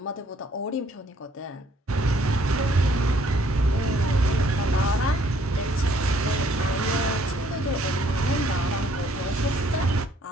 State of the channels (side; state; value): both; normal; correlation 0.64